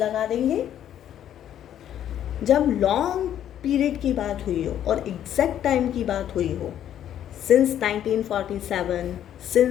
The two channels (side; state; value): right; quieter; 10.6 dB